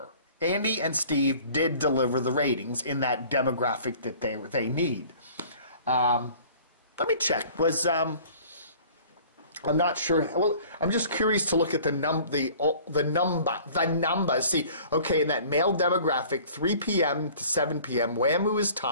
Andy and Steve did deliver the ratings in that demographic that they need. Let me check. I'm not sure. Well, I'm just curious to look at the numbers. See, okay, in that male demographic, 3 p.m. to 7 p.m., WAMU is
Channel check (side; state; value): both; inverted; correlation -0.49